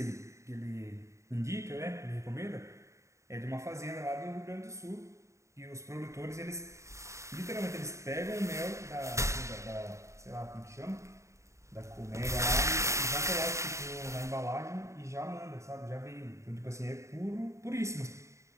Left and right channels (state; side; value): late; left; 0.14 ms